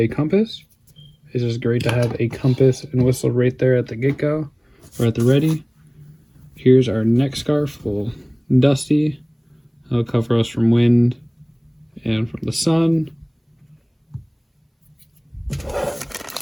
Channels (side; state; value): both; identical; correlation 1.00